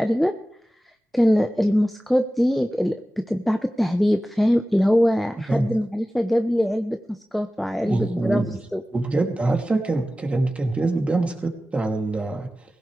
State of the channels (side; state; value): both; normal; correlation 0.96